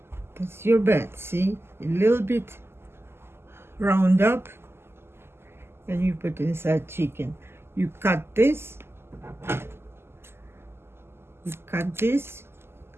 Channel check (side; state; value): left; late; 0.12 ms